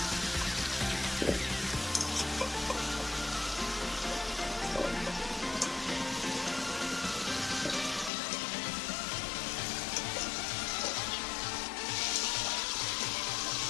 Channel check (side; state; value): right; drops out; at 8.1 s